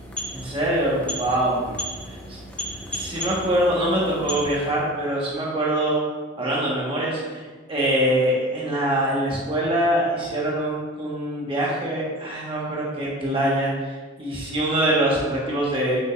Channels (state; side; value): normal; both; correlation 0.35